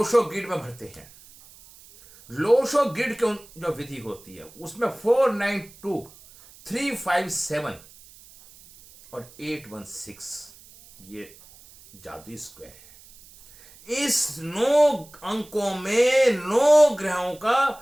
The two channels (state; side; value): noise; right; hiss, 23 dB below the sound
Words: ग्रिड में भरते हैं। लोशो ग्रिड की जो विधि होती है उसमें 492, 357 और 816 ये जादुई स्क्वायर है। इस 9 अंकों में 9 ग्रहों